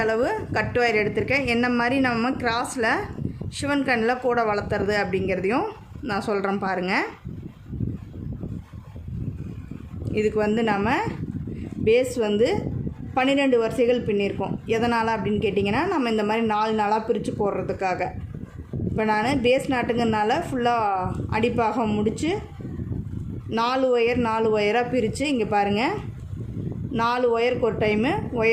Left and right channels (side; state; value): both; identical; correlation 1.00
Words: அளவு கட்டு வயர் எடுத்திருக்கேன், என்ன மாதிரி நம்ம கிராஸில் சிவன் கண்ணில் கூடை வளர்த்துறது அப்படிங்கிறதையும் நான் சொல்கிறேன். பாருங்கள், இதுக்கு நம்ம பேஸ் 12 வரிசைகள் பின்னியிருக்கோம். எதனால் அப்படின்னு கேட்டிங்கன்னா, நம்ம இந்த மாதிரி 4 நாளாக பிரித்து போடுறதுக்காக. இப்போ நான் பேஸ் நாட்டுங்கிறதுனால ஃபுல்லாக அடிப்பாகம் முடித்து 4 ஒயராக பிரித்து, இங்கே பாருங்கள், 4 ஒயருக்கு ஒரு டைமு